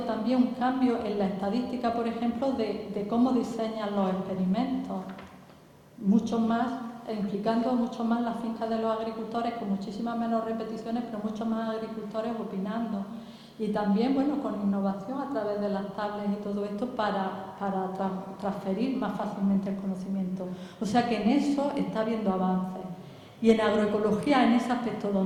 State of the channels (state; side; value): identical; both; correlation 1.00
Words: un cambio en la estadística, por ejemplo, de cómo diseñan los experimentos. Mucho más, implicando mucho más las fincas de los agricultores, con muchísimas menos repeticiones, pero muchos más agricultores opinando. Y también, con innovación a través de las tablets y todo esto para transferir más fácilmente el conocimiento. O sea que en eso está habiendo avances. Y en agroecología, en ese aspecto,